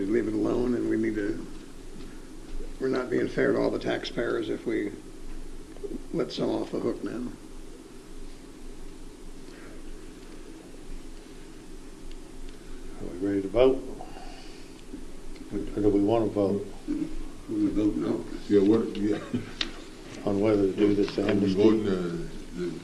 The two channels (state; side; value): identical; both; correlation 1.00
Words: to leave it alone, and we're not being fair to all the taxpayers if we let some off the hook now. Are we ready to vote? Or do we want to vote We vote no. Yeah, on whether to do this are we amnesty? voting